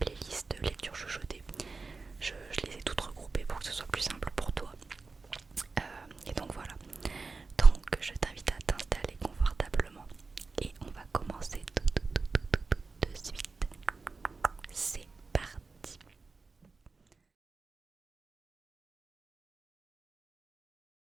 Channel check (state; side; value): quieter; left; 4.1 dB